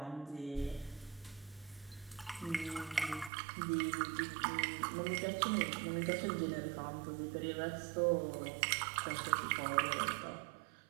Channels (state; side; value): drops out; left; at 3.3 s